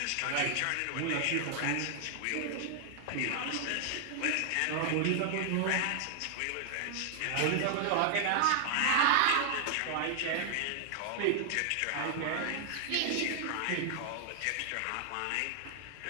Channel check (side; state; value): both; different; correlation 0.00